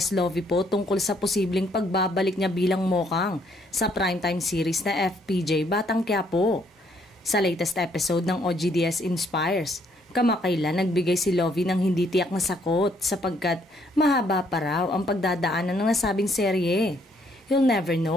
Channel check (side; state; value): both; normal; correlation 0.68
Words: Lovie po tungkol sa posibleng pagbabalik niya bilang Mokang sa primetime series na FPJ Batang Quiapo. Sa latest episode ng OGDS Inspires, kamakailan nagbigay si Lovie ng hindi tiyak na sakot sapagkat mahaba pa raw ang pagdadaanan ng nasabing serye. You'll never